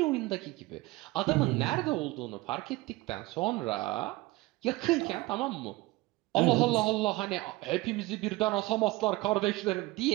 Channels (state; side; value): quieter; left; 20.5 dB